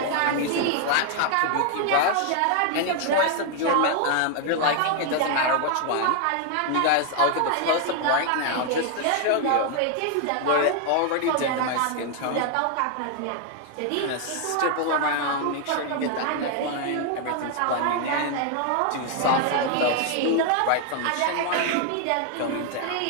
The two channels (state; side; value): different; both; correlation 0.00